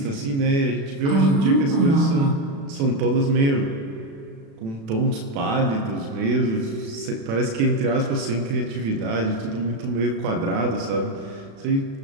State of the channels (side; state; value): left; late; 36 ms